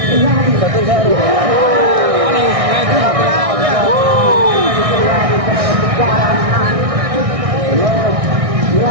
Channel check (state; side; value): late; left; 1.6 ms